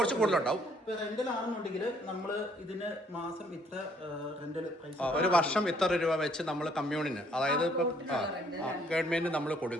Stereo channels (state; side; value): normal; both; correlation 0.64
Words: കൂടുതലുണ്ടാവും. റെന്റൽ ആണെന്നുണ്ടെങ്കിൽ നമ്മൾ ഇതിന് മാസം ഇത്ര റെന്റൽ പൈസ, ഒരു വർഷം ഇത്ര രൂപ വെച്ച് നമ്മൾ കമ്മ്യൂണിന്, അതായത് ഇപ്പം ഗവൺമെന്റിന് നമ്മൾ